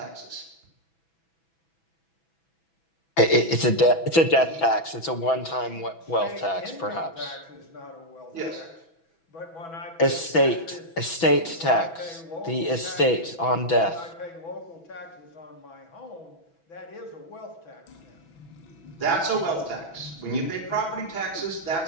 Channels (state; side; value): late; right; 6.1 ms